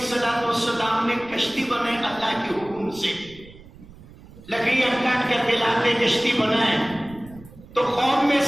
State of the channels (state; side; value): noise; right; rumble, 20 dB below the sound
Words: نے کشتی بنائے اللہ کے حکم سے، لکڑیاں کاٹ کر کے لاتے کشتی بنائے. تو قوم میں